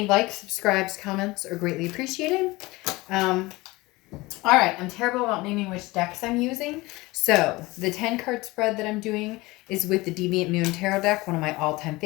likes, subscribes, comments are greatly appreciated. All right, I'm terrible about naming which decks I'm using. So the 10 card spread that I'm doing is with the Deviant Moon Tarot deck, one of my all-time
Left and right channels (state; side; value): quieter; right; 21.4 dB